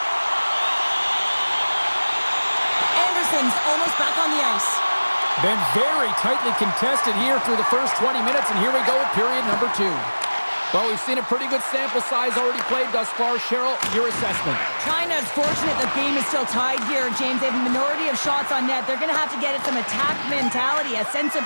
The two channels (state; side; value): inverted; both; correlation -1.00